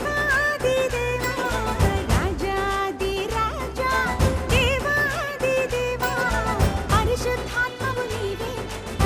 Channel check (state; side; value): identical; both; correlation 1.00